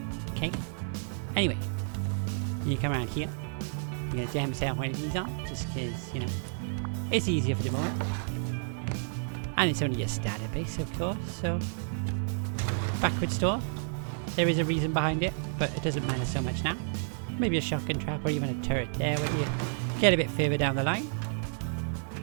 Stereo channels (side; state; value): left; silent; digital silence